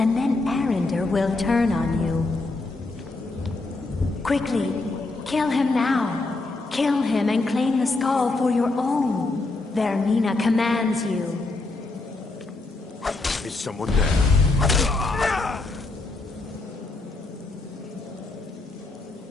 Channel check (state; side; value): quieter; right; 3.3 dB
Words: then Arender will turn on you. Quickly, kill him now. Kill him and claim the skull for your own. Vermina commands you. Is someone there?